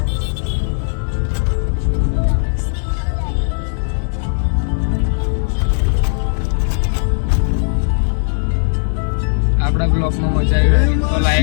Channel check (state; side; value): silent; right; digital silence